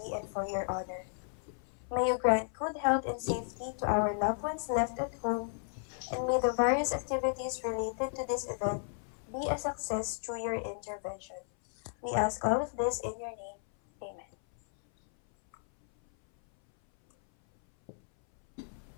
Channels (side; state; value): right; silent; 55 dB below the other